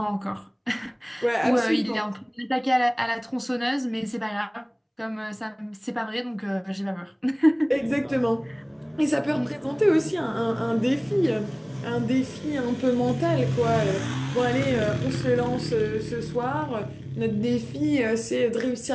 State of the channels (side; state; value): both; identical; correlation 1.00